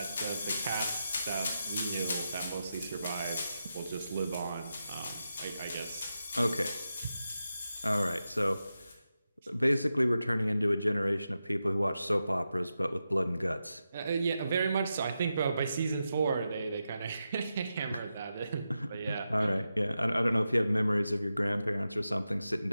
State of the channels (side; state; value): both; inverted; correlation -0.89